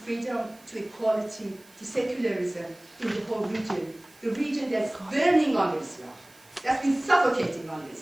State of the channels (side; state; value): right; noise; hiss, 27 dB below the sound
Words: to equality, to secularism in the whole region. The region that's burning on Islam, that's been suffocating on